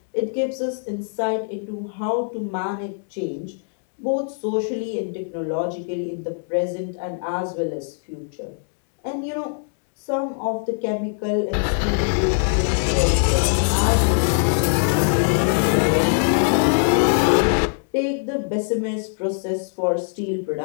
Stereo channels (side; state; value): right; silent; digital silence